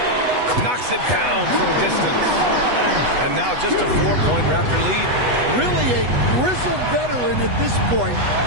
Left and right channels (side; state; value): left; late; 8.1 ms